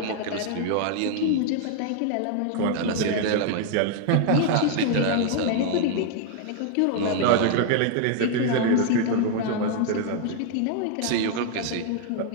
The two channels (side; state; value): both; different; correlation 0.00